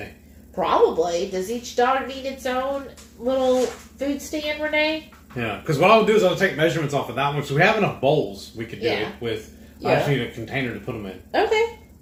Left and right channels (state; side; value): identical; both; correlation 1.00